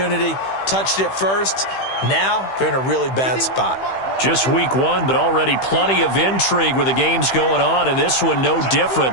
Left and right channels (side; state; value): right; late; 15 ms